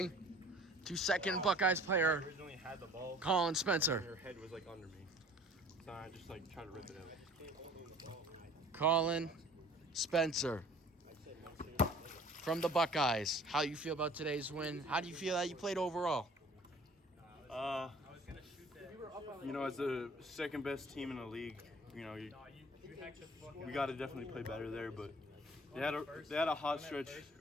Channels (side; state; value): both; normal; correlation 0.50